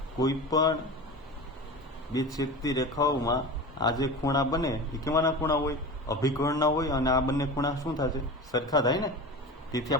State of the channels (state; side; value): normal; both; correlation 0.31